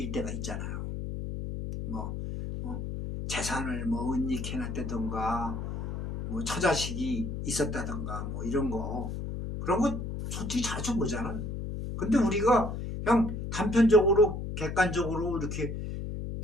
때가 있잖아요. 뭐 재산을 뭐 은닉해놨다던가 뭐 처자식이 있었다던가 뭐 이런 거, 그런 거 솔직히 자주 보잖아. 근데 우리가 그냥 단편적으로 객관적으로 이렇게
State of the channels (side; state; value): left; noise; hum, 5 dB below the sound